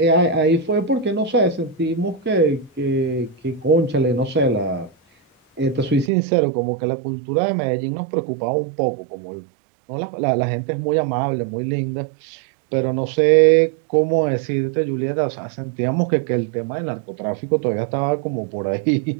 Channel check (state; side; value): drops out; left; at 6.1 s